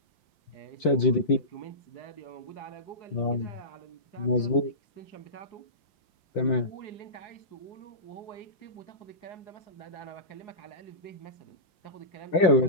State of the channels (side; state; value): right; late; 5.7 ms